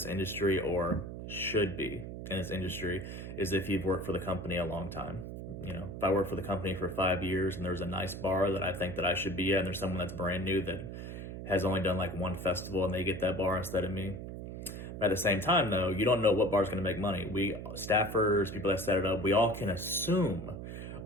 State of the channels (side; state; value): right; noise; hum, 8 dB below the sound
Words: industry, or should be in this industry, is if you've worked for the company a long time. You know, if I work for the company for 5 years and there's a nice bar that I think that I should be at, and there's someone that's brand new that has only done like one festival and they get that bar instead of me. But at the same time, though, you don't know what bar is going to make money. We staffers, people that set it up, we all can assume